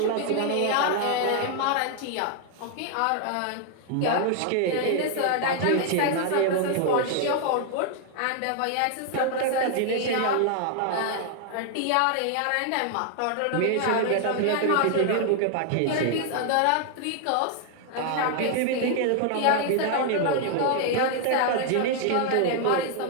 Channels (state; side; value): different; both; correlation 0.00